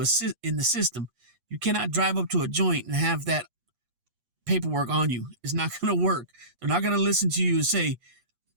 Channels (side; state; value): left; late; 8.4 ms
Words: in the system. You cannot drive up to a joint and have that paperwork on you. It's not going to work. They're not going to listen to you and say,